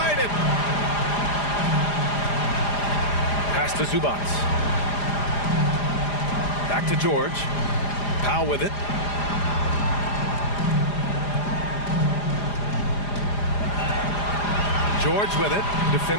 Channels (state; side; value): late; right; 4.9 ms